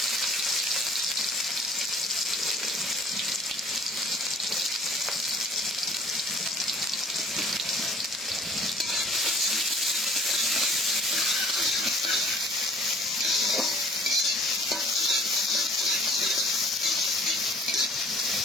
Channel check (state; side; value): normal; both; correlation 0.53